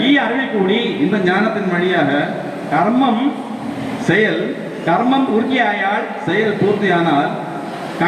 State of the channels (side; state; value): both; identical; correlation 1.00